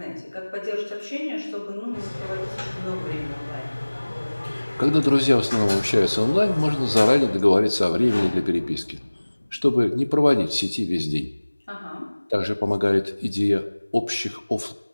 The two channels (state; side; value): inverted; both; correlation -1.00